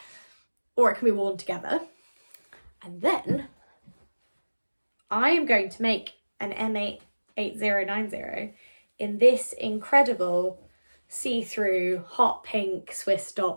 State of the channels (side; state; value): both; inverted; correlation -1.00